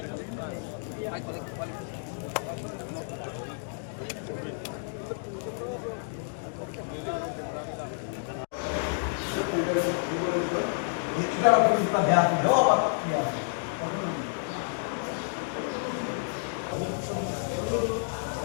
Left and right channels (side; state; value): right; silent; digital silence